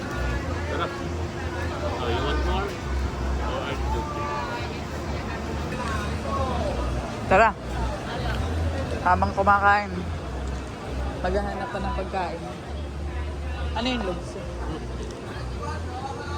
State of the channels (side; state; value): both; identical; correlation 1.00